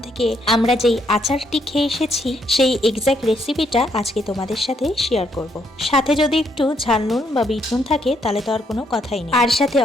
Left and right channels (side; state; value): both; normal; correlation 0.73